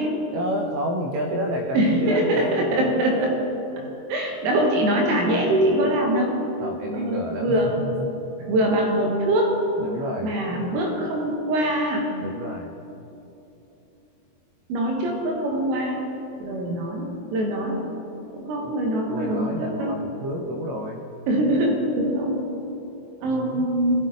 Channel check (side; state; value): left; late; 23 ms